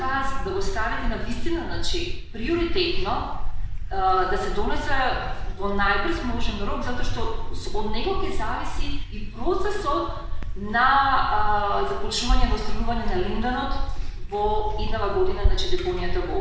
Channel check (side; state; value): both; identical; correlation 1.00